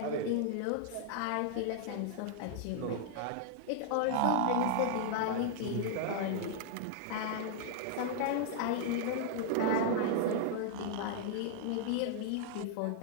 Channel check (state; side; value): different; both; correlation -0.01